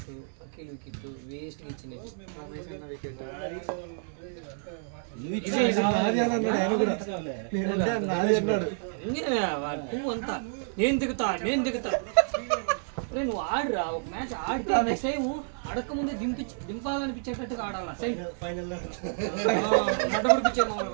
Akhil wicket waste ఇచ్చినవి అంతా నేను దిగుతా నువ్వు ఆడురా ఒక మ్యాచ్ ఆడితే నెక్స్ట్ టైం అడక్క ముందే దింపాలనిపించేటట్టుగా ఆడాలా ఫైనల్ నడబడిపించే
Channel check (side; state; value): left; silent; 56 dB below the other